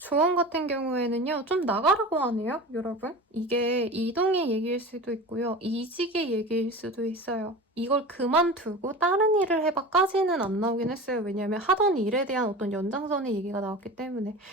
같은 경우에는요, 좀 나가라고 하네요, 여러분. 이게 이동의 얘기일 수도 있고요, 이직의 얘기일 수도 있어요. 이걸 그만두고 다른 일을 해봐까지는 안 나오긴 했어요. 왜냐면 하던 일에 대한 어떤 연장선의 얘기가 나왔기 때문에.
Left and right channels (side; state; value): both; normal; correlation 0.33